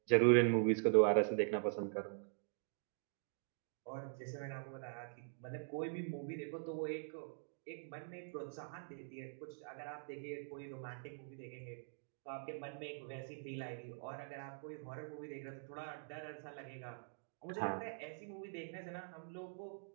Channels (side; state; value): left; silent; digital silence